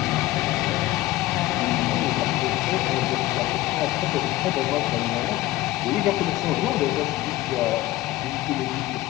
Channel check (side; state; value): right; quieter; 16.9 dB